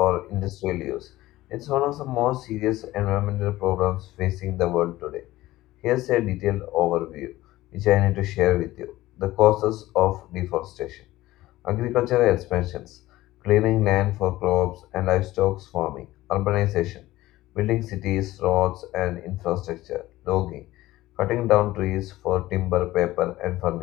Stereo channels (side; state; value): right; quieter; 16.8 dB